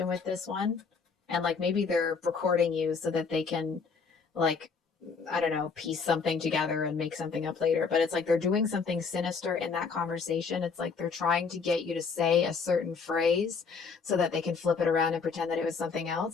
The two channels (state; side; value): quieter; right; 5.2 dB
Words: with this one, and like maybe they're recording you so that they can, like, I don't know, piece something together and make something up later. But it's like they're doing something sinister in that conversation. It's like they're trying to get you to say a certain phrase so that they can flip it around and pretend that it was something